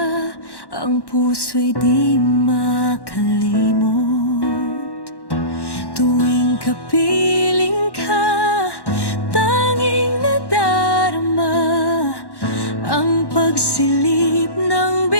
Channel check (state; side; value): late; right; 1.1 ms